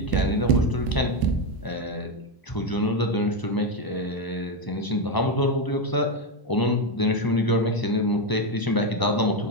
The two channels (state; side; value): late; right; 1.0 ms